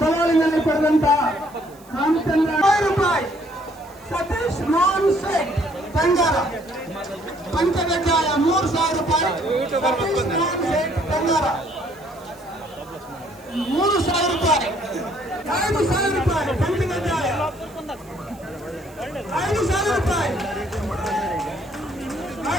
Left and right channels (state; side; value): noise; right; hiss, 26 dB below the sound